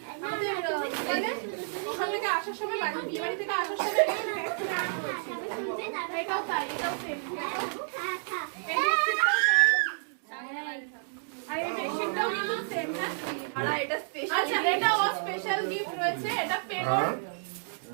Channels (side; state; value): left; silent; digital silence